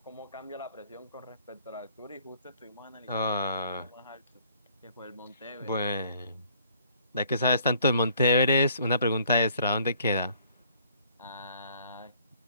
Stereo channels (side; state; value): both; inverted; correlation -0.60